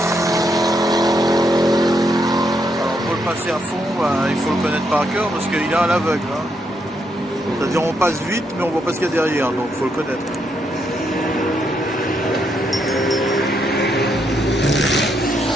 Alors pour le passer à fond, il faut le connaître par cœur parce qu'il est à l'aveugle. Hein. C'est-à-dire on passe vite mais on voit pas ce qu'il y a derrière, donc il faut le connaître.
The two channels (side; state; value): both; normal; correlation 0.77